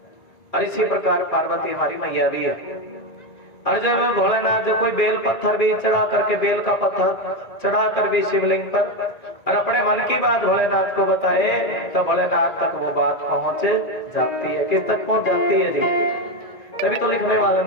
और इसी प्रकार पार्वती हमारी मैया भी है। और जब भोलेनाथ जो कोई बेल पत्थर भी चढ़ा करके बेल का पत्थर चढ़ा कर भी शिवलिंग पर और अपने मन की बात भोलेनाथ को बताए तो भोलेनाथ तक वो बात पहुंच जाती है। किस तक पहुंच जाती है जी? तभी तो लिखने वाले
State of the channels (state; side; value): late; right; 1.9 ms